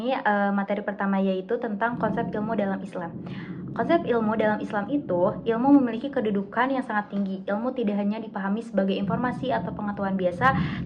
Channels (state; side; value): identical; both; correlation 1.00